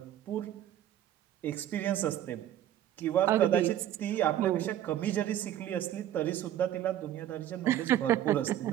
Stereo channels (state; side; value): quieter; left; 11.7 dB